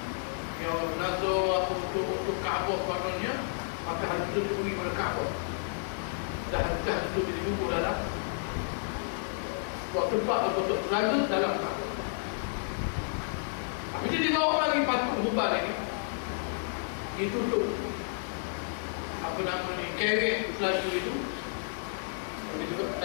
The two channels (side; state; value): right; silent; digital silence